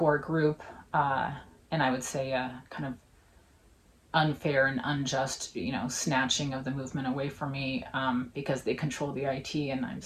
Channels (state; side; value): identical; both; correlation 1.00